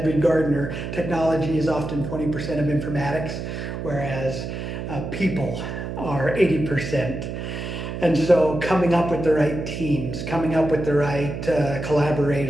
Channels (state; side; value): noise; right; hum, 6 dB below the sound